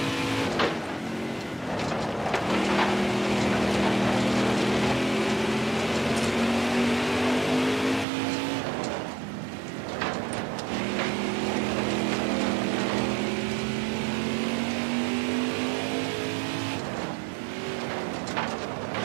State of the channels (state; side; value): drops out; left; at 8.1 s